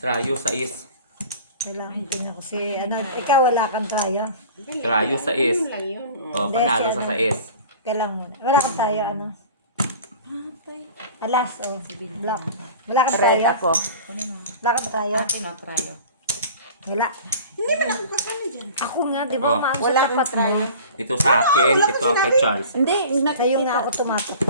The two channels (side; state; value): both; inverted; correlation -0.41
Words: sa is. Kailangan tingnan ko si, ano, ikaw wala kang tayo. Trayo sa is. Ano lang yun. Oh. Panalo sa is. Kailangan mo. Wala kang tayo, ano. Alas, oh. Black. Wala kang Red tayo. ako. Wala kang tayo. Akin o, try o. Wala. Hindi man ako kasama dyan. Ako nga, di ba, Oh. maano Wala sa akong tapat mo. try. Ito sa akin, ito ang kay Charles. Hindi, Sa'yo nga nakikita. ako